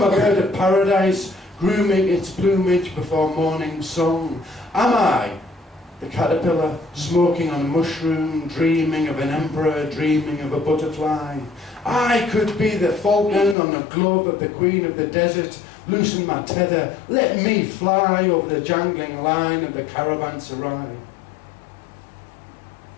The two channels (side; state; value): right; drops out; at 13.6 s